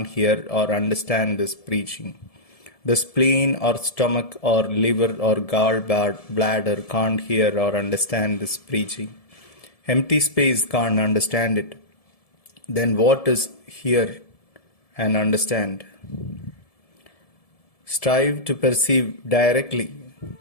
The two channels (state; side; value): late; right; 1.7 ms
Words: hear or understand this preaching. The spleen or stomach or liver or gallbladder can't hear or understand this preaching. Empty space can't understand it. Then what is hear and understand? Strive to perceive directly.